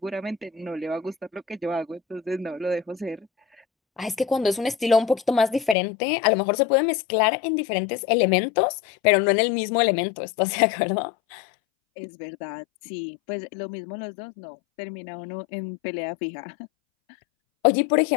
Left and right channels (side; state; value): right; drops out; at 5.8 s